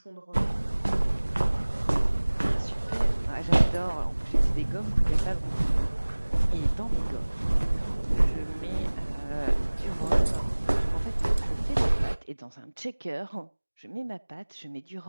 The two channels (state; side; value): inverted; both; correlation -1.00